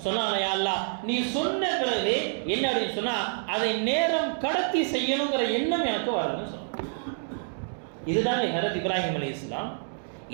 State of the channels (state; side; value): silent; left; digital silence